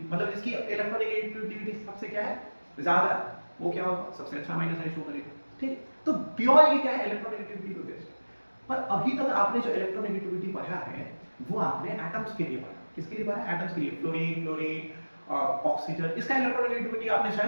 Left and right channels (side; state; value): both; inverted; correlation -1.00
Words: मतलब जिसकी इलेक्ट्रोनेगेटिविटी सबसे क्या है, ज्यादा, वो क्या होगा, सबसे अच्छा माइनस आई शो करेगा, ठीक। तो प्योर ये क्या है, इलेक्ट्रोनेगेटिविटी पे बेस्ड है। पर अभी तक आपने जो इलेक्ट्रोनेगेटिविटी पढ़ा है वो आपने एटम्स के लिए पढ़ा, किसके लिए पढ़ा, एटम्स के लिए, फ्लोरीन ऑक्सीजन, इसका इलेक्ट्रोनेगेटिविटी आपने